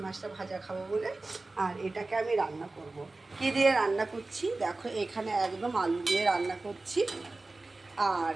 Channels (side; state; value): left; quieter; 3.2 dB